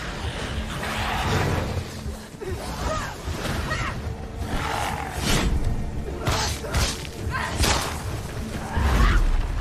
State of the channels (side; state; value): both; identical; correlation 1.00